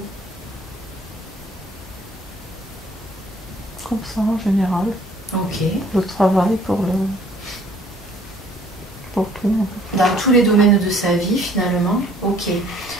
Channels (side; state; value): both; normal; correlation 0.58